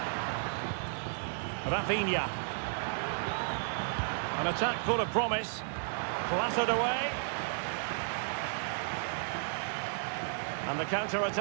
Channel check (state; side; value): silent; left; 56 dB below the other